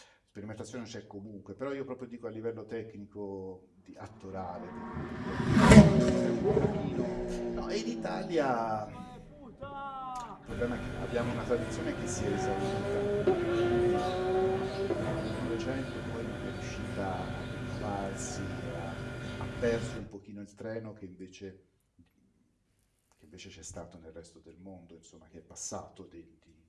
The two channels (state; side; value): identical; both; correlation 1.00